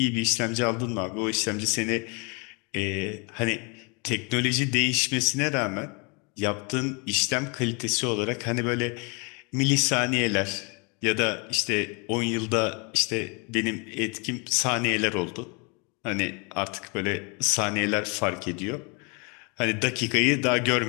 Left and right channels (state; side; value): quieter; right; 32.7 dB